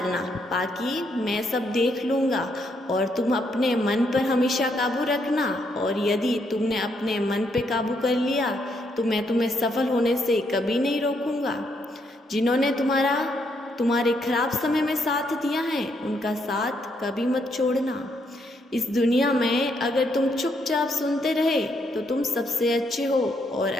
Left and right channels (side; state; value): both; normal; correlation 0.75